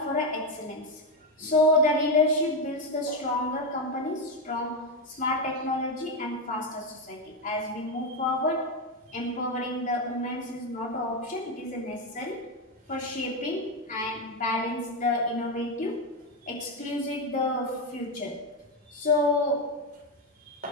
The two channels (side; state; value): both; normal; correlation 0.09